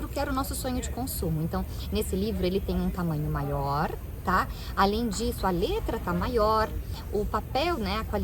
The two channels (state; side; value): identical; both; correlation 1.00